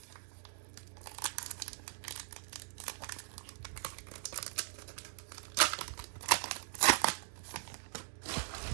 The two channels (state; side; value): silent; left; digital silence